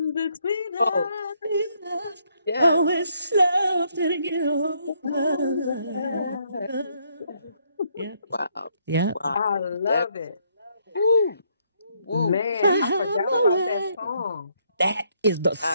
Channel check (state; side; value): inverted; both; correlation -0.72